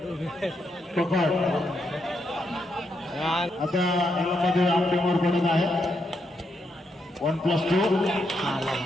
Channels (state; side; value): normal; both; correlation 0.80